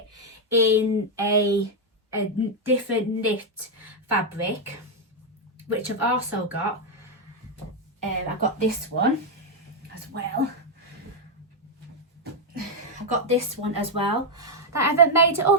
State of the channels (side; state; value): both; normal; correlation 0.00